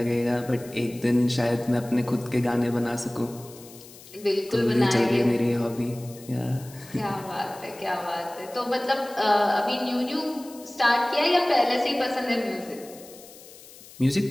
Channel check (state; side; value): noise; left; hiss, 20 dB below the sound